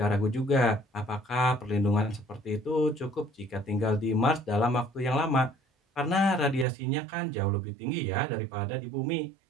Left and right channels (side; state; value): left; drops out; at 6.7 s